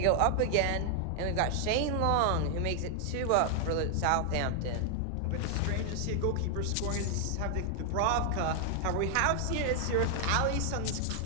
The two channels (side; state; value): both; different; correlation 0.00